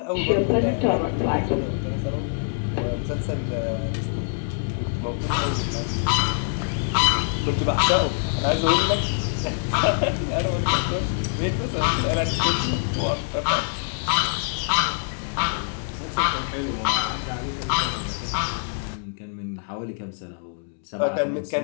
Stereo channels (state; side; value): silent; right; 62 dB below the other